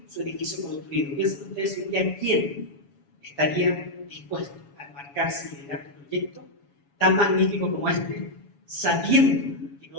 su edificio construido. Piensen ustedes un día quién estaría dispuesto a embarcarse y liderar un proyecto tan magnífico como este, sabiendo que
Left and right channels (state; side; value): late; right; 7.1 ms